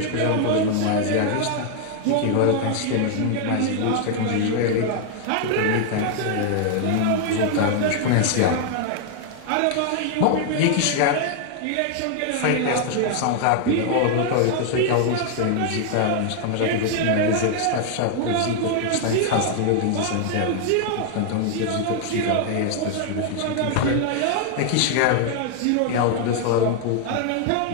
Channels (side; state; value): both; different; correlation 0.00